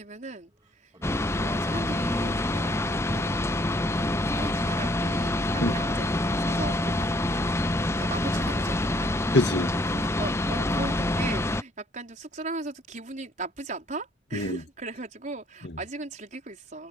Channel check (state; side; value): normal; both; correlation 0.64